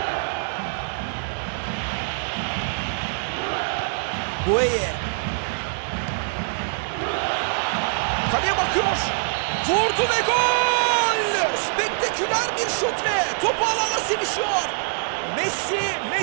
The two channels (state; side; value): silent; left; digital silence